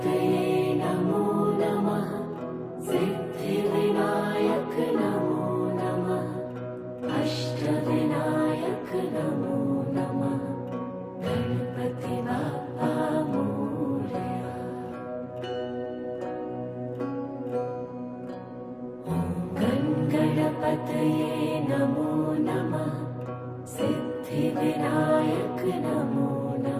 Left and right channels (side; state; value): both; identical; correlation 1.00